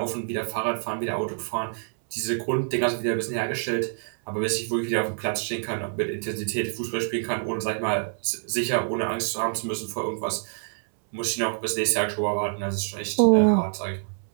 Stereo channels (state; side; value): silent; left; 61 dB below the other